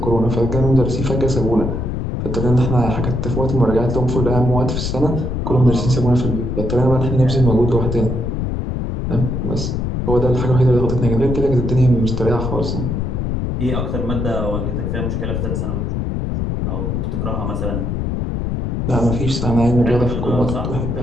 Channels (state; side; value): noise; left; rumble, 1 dB below the sound